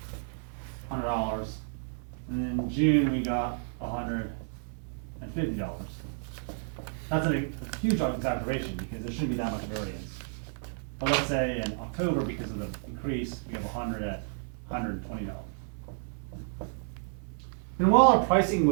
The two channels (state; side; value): silent; left; 57 dB below the other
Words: $100. And in June, we got $150. That's a huge exaggeration because there shouldn't be that much variance. But let's say in October, because of the increase, we have 100 at $120. And while our pricing